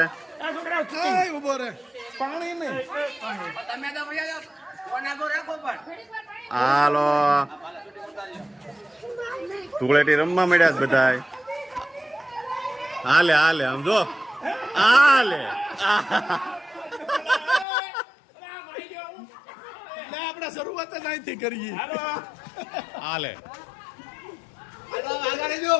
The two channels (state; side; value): drops out; right; at 17.7 s